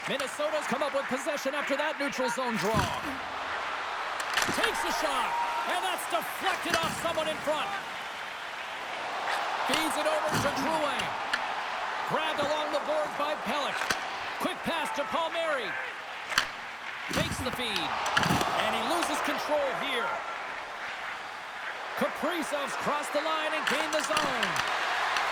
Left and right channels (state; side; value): identical; both; correlation 1.00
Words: Minnesota's come up with possession after that neutral zone draw. Takes a shot, and that's deflected off someone in front. Feeds it over to Drouin. Grabbed along the boards by Pelech. Quick pass to Palmieri. Takes the feed. And he loses control here. Kaprizov's crossed the line and gained the zone.